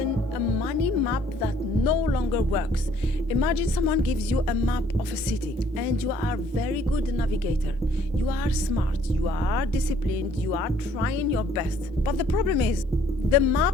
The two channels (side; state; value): both; normal; correlation 0.61